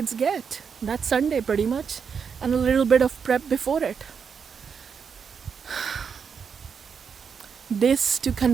get. That's Sunday pretty much, and a little bit of prep before it. This to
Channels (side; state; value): left; quieter; 6.5 dB